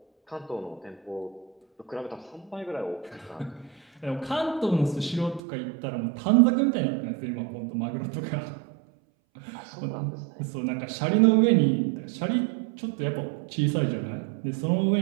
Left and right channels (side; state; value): left; drops out; at 5.4 s